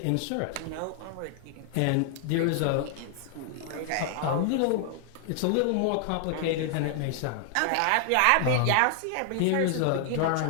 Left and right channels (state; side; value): different; both; correlation 0.00